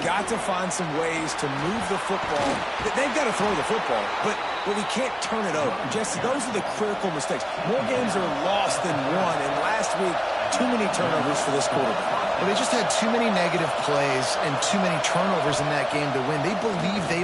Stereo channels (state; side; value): identical; both; correlation 1.00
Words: got to find some ways to move the football. They've got to throw the football, but we can't turn it over. Jesse, those are the critical mistakes. More games are lost than won. And last week, too many turnovers for this quarterback. Well, they just had too many negative plays and too many turnovers in that game to win. They believe